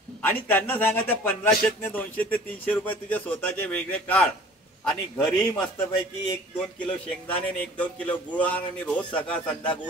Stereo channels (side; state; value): both; normal; correlation 0.47